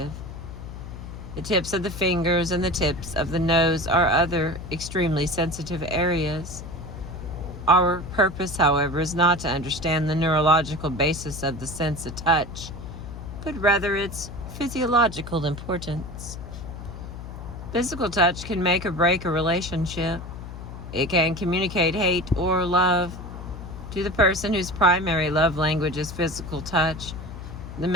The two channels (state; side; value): noise; left; hum, 11 dB below the sound